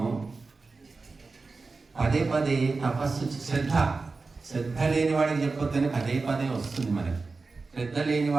పదే పదే తపస్సు, శ్రద్ధ లేని వాడికి చెప్పొద్దని పదే వస్తుంది మనకి. శ్రద్ధ లేని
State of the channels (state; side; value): quieter; left; 4.0 dB